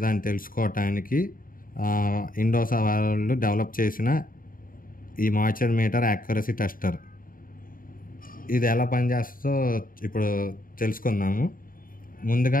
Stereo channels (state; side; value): late; right; 0.41 ms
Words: అని తెలుసుకోవటానికి ఇండోసా వాళ్ళు డెవలప్ చేసిన ఈ మాయిశ్చర్ మీటర్ యాక్యురసీ టెస్టర్. ఇది ఎలా పనిచేస్తుందో ఇప్పుడు తెలుసుకుందాము.